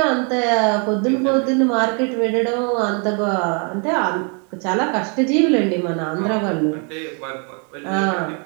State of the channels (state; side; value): quieter; left; 37.0 dB